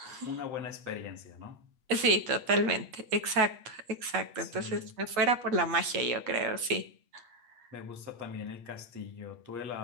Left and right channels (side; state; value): left; late; 8.5 ms